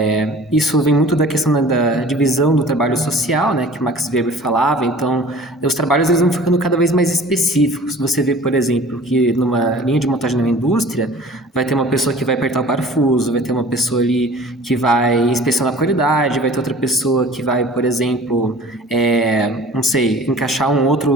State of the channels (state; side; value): normal; both; correlation 0.45